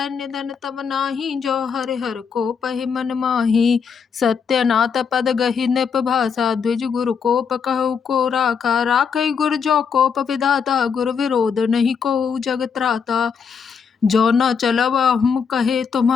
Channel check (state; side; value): quieter; right; 6.4 dB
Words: निधन तब नाही, जो हरि हर को पहि मन माही। सत्यनाथ पद गहि नृप भाषा, द्विज गुरु कोप कहु को राखा। राखै गुर जो कोप विधाता, गुर विरोध नहीं को जग त्राता। जो न चलब हम कहे